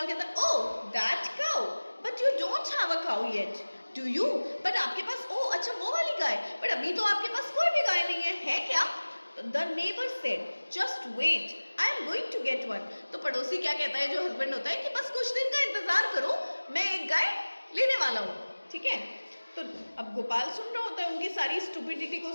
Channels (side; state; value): both; inverted; correlation -1.00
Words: कहता है Oh, that cow, but you don't have a cow yet, do you? But आपके पास अच्छा वो वाली गाय, but अभी तो आपके पास कोई भी गाय नहीं है क्या? The neighbor said, just wait, I am going to get one. तो पड़ोसी क्या कहता है, जो हस्बैंड होता है, कि बस कुछ दिन का इंतजार करो, मैं एक गाय लेने वाला हूँ। ठीक है, तो अब गोपाल सुन रहा होता है, उनकी सारी स्टूपिडिटी को